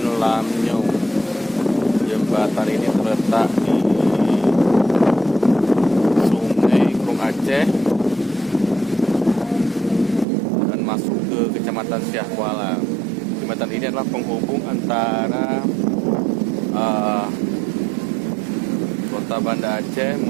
Lamnyong. Jembatan ini terletak di Sungai Krung Aceh dan masuk ke Kecamatan Siak Kuala. Jembatan ini adalah penghubung antara Kota Banda Aceh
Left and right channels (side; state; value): left; drops out; at 10.2 s